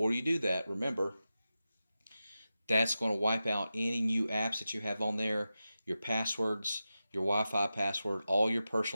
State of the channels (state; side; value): inverted; both; correlation -0.92